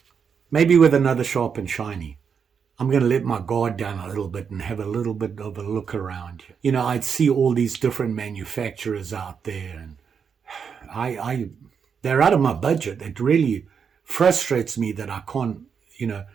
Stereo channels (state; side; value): quieter; left; 6.6 dB